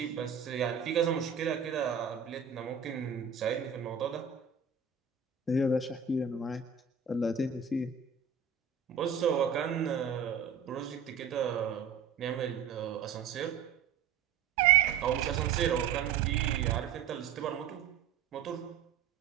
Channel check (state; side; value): quieter; left; 6.9 dB